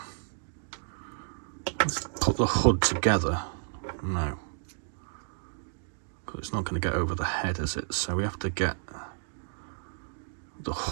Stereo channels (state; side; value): silent; left; digital silence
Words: let's put the hood together. No, because it's not going to get over the head, is it? So we have to get the